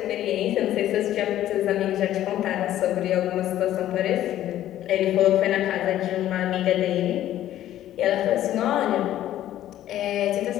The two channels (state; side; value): quieter; right; 12.7 dB